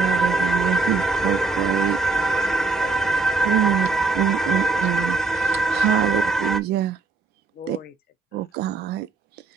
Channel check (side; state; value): left; quieter; 3.9 dB